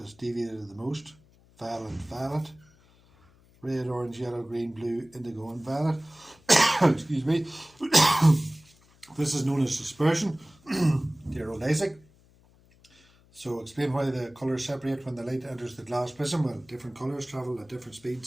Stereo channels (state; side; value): noise; left; hum, 29 dB below the sound